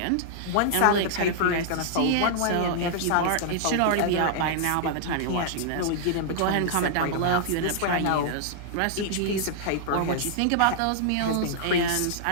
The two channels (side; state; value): both; different; correlation -0.01